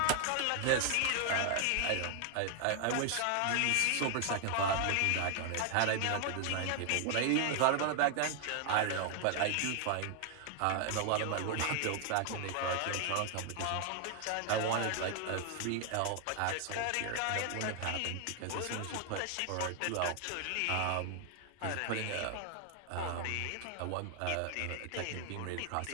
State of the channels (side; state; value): both; different; correlation 0.00